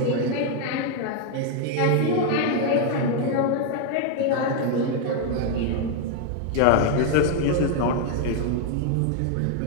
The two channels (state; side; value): different; both; correlation 0.00